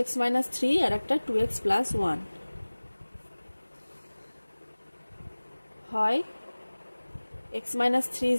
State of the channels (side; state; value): both; inverted; correlation -1.00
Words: x মাইনাস 3 আর একটা 2x প্লাস 1, হয় x minus 3